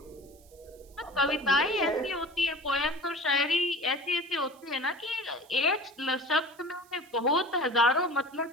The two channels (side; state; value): right; noise; hiss, 27 dB below the sound